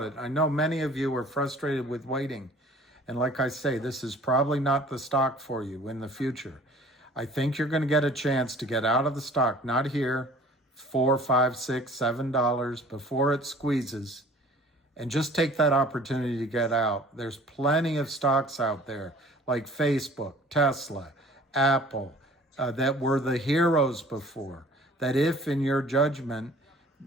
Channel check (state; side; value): normal; both; correlation 0.49